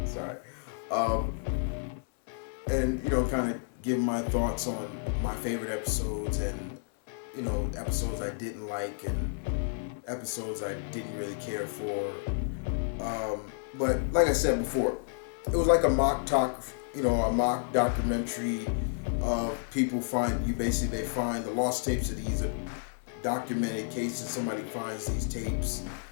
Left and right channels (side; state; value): right; silent; 57 dB below the other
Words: Sorry. And kind of give my thoughts on my favorite episodes, and episodes I didn't like and episodes I didn't really care for. But like I said before, it was like a mock documentary of people they find the lost tapes of these documented cases. Somebody finds these tapes,